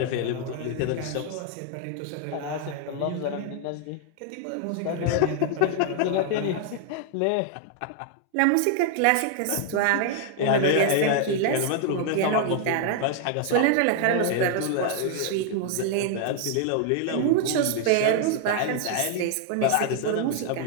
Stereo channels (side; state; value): both; different; correlation 0.00